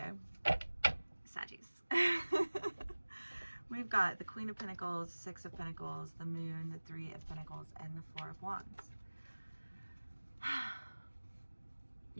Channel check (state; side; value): inverted; both; correlation -1.00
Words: Saggies. We've got the Queen of Pentacles, 6 of Pentacles, the Moon, the 3 of Pentacles, and the 4 of Wands.